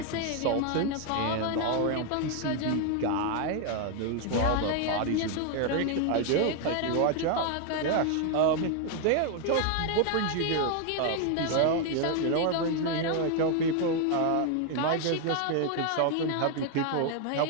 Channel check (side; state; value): both; different; correlation 0.01